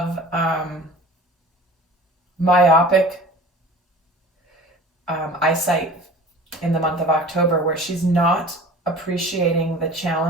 myopic eyesight in the month of October, where she's not appreciating the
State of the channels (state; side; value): normal; both; correlation 0.41